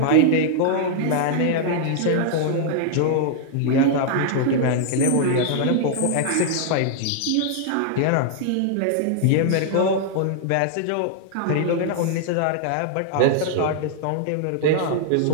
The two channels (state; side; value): different; both; correlation -0.01